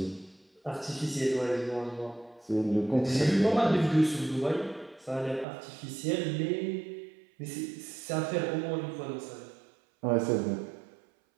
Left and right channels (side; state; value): left; drops out; at 5.5 s